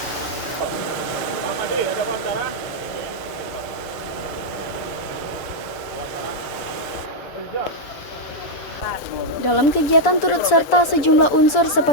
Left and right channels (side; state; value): right; late; 7.1 ms